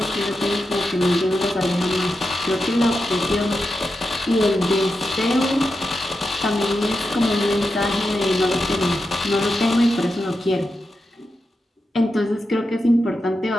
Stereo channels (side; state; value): both; normal; correlation 0.88